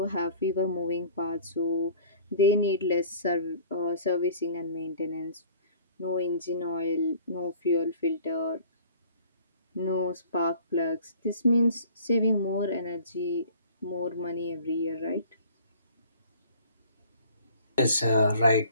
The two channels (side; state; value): both; inverted; correlation -0.50